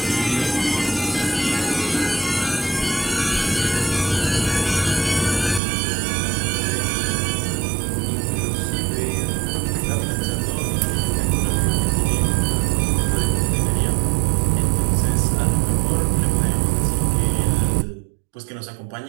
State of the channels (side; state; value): left; drops out; at 5.6 s